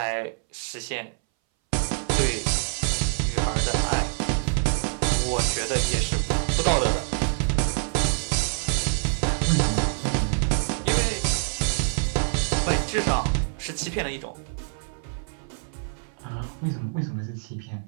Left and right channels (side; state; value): left; silent; 60 dB below the other